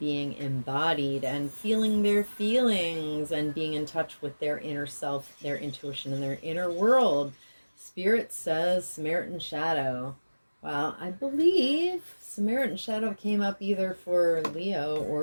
embodied and feeling their feelings and being in touch with their inner self, their intuition, and their inner world? Spirit says Samaritan Shadow. Well, I believe Samaritan Shadow came up either for Leo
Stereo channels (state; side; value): inverted; both; correlation -1.00